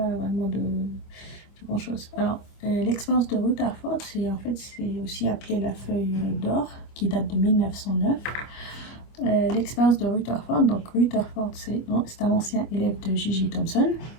vraiment de grand chose. Alors l'expérience de Rutherford, c'est aussi appelé la feuille d'or qui date de 1909. L'expérience de Rutherford, donc Rutherford c'est un ancien élève de J.J. Thomson.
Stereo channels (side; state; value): right; late; 25 ms